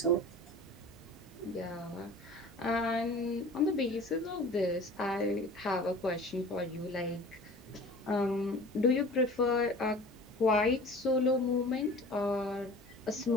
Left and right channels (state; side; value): normal; both; correlation 0.42